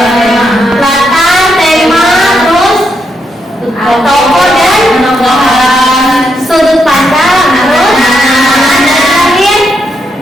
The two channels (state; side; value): normal; both; correlation 0.80